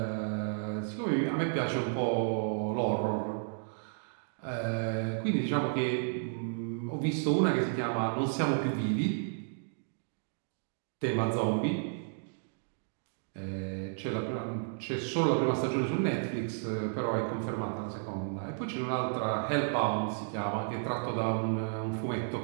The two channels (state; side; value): silent; left; digital silence